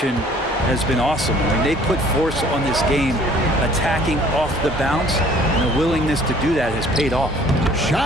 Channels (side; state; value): both; normal; correlation 0.55